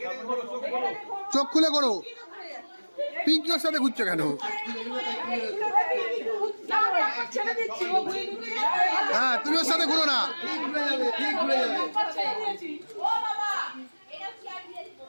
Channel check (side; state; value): both; inverted; correlation -1.00